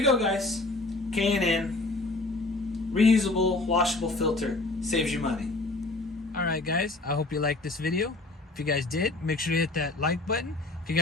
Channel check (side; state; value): right; quieter; 3.0 dB